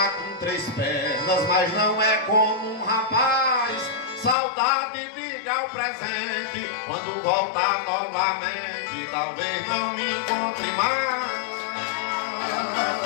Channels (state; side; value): drops out; right; at 4.4 s